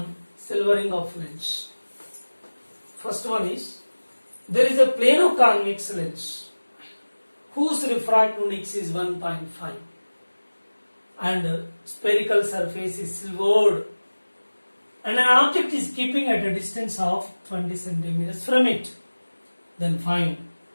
silvering of lens. First one is, there is a plano-convex lens whose refractive index is 1.5 and spherical surface is silvered and an object is keeping at a distance of 20 centimeters from it. Then find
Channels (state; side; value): inverted; both; correlation -1.00